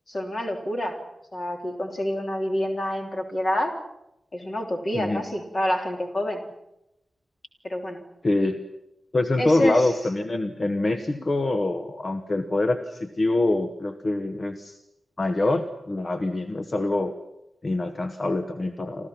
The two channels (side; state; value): both; normal; correlation 0.96